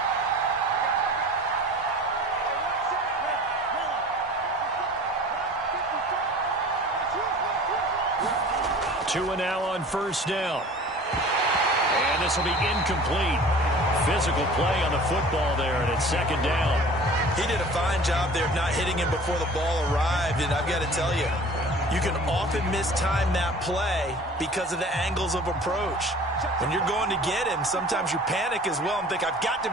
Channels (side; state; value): both; normal; correlation 0.44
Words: Two and now on first down. And this will be incomplete. Physical play on the football there, and it's second down. He did a fine job there of not hitting him before the ball arrived, and I've got to tell you, you can often mistime that play because of the angles of approach. When you're going to get him, sometimes you panic as well and think, I've got